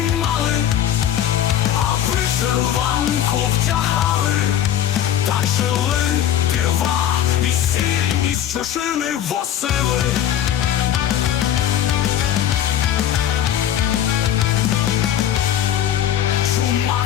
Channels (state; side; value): quieter; right; 10.7 dB